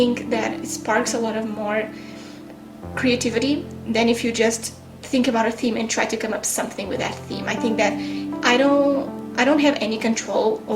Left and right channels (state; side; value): identical; both; correlation 1.00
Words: that it sparks a lot of more creativity than if you just think about a theme and try to come up something with that theme. I think that I don't have any control